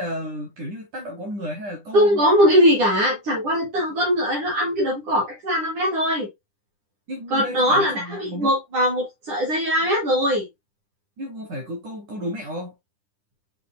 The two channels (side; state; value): left; late; 10 ms